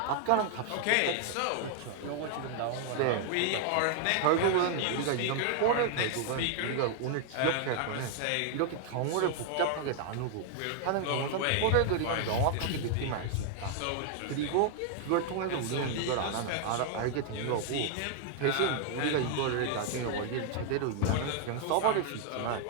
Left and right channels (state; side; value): different; both; correlation 0.00